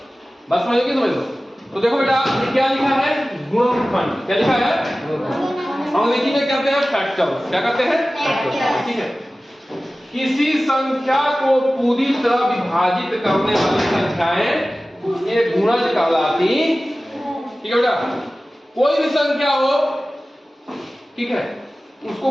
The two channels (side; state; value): both; normal; correlation 0.96